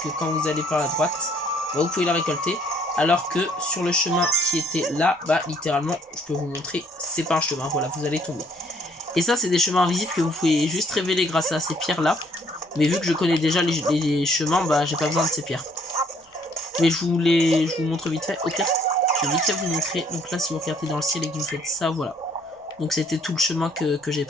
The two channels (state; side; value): normal; both; correlation 0.63